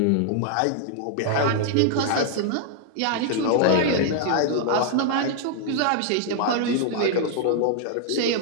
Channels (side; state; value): both; different; correlation 0.00